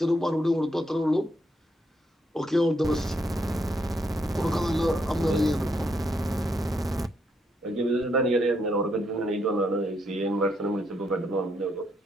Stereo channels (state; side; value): normal; both; correlation 0.77